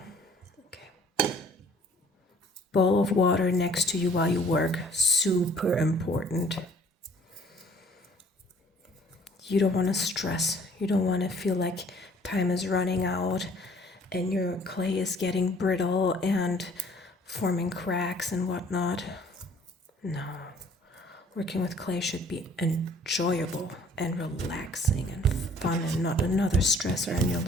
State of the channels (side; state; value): both; normal; correlation 0.56